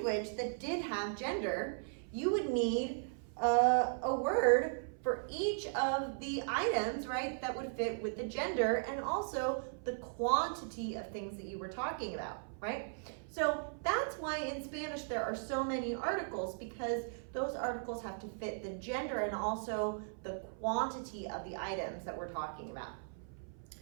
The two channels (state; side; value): silent; left; 53 dB below the other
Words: that did have gender, you would need a word for each of the items, right, that would fit with the gender and also the quantity of things that you were talking about, right? So that's why in Spanish there are so many articles, because those articles have to fit the gender and also the quantity of the items that we're talking about.